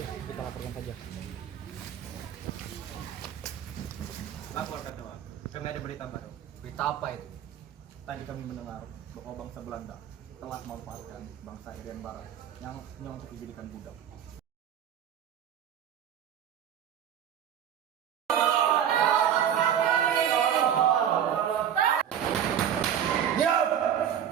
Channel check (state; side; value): quieter; left; 9.4 dB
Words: kita laporkan saja. Lapor Ketua. Kami ada berita baru. Berita apa itu? Tadi kami mendengar bahwa bangsa Belanda telah memanfaatkan bangsa Irian Barat yang hanya untuk dijadikan budak.